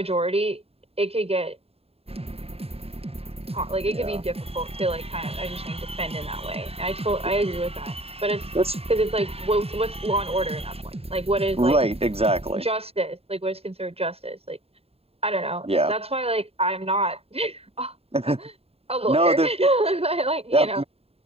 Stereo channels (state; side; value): late; left; 0.29 ms